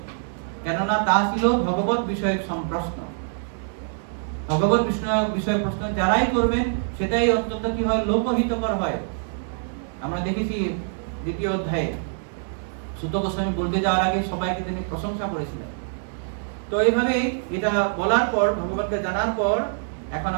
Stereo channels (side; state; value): left; silent; digital silence